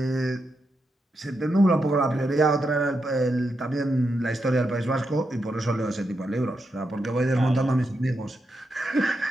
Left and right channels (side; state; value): both; normal; correlation 0.85